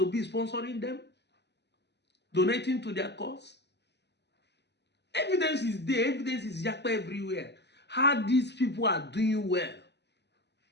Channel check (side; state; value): right; late; 0.50 ms